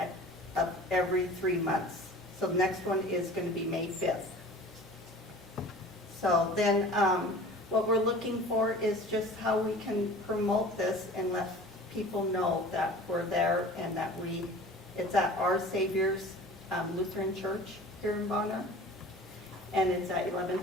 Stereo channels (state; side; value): normal; both; correlation 0.42